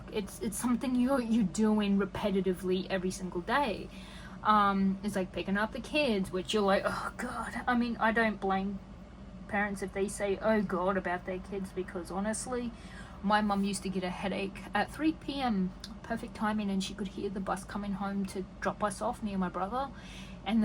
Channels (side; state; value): both; identical; correlation 1.00